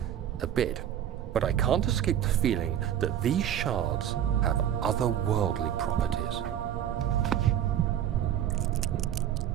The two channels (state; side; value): quieter; left; 10.3 dB